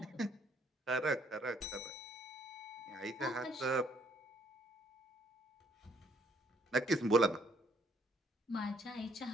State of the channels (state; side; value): normal; both; correlation 0.67